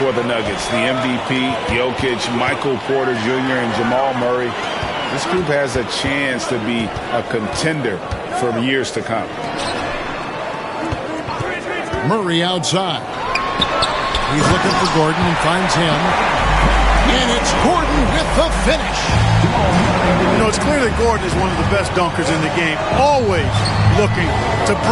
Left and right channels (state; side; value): identical; both; correlation 1.00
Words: the Nuggets. The MVP, Jokic, Michael Porter Jr., and Jamal Murray. This group has a chance to be a contender for years to come. Murray outside. He's looking for Gordon and finds him. And it's Gordon with the finish. You know, it's clear that Gordon is one of the best dunkers in the game, always looking to